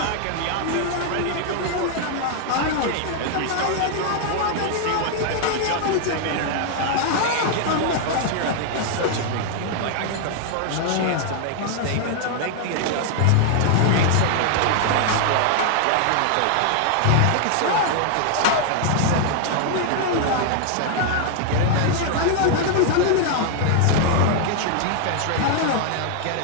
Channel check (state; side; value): different; both; correlation 0.00